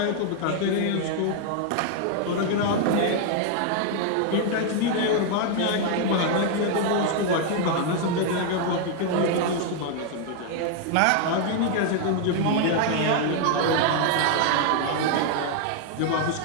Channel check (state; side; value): different; both; correlation 0.00